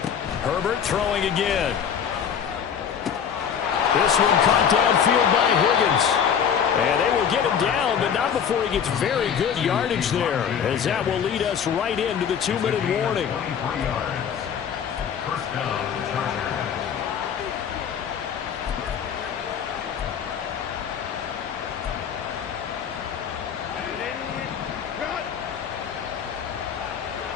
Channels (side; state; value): right; quieter; 7.8 dB